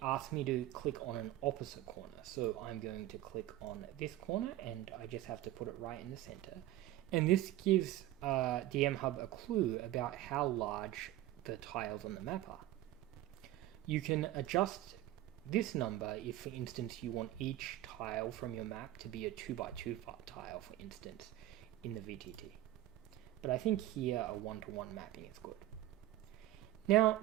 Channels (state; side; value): quieter; left; 14.5 dB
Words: asks me to click on an opposite corner. So I'm going to click on this corner, and I just have to put it right in the center. And this gives DMHub a clue about how large the tiles on the map are. You can adjust this number if, for instance, you want each tile from your map to be a 2x2 tile, for instance, in the VTT. But I think here a 1-to-1 mapping is good. Now,